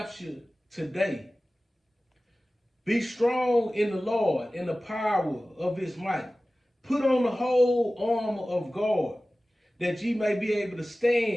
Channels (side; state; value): both; normal; correlation 0.97